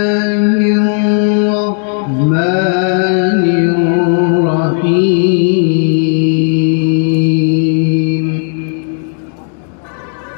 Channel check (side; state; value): right; silent; 62 dB below the other